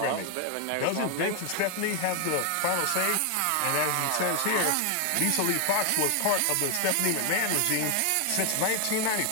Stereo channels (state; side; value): different; both; correlation 0.00